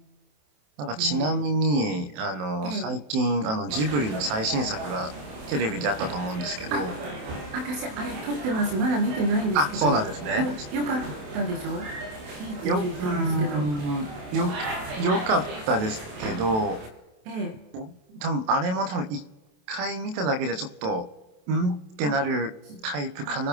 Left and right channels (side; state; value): left; late; 27 ms